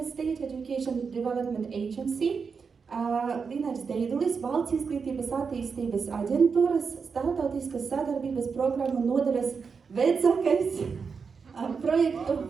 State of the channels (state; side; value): quieter; left; 5.5 dB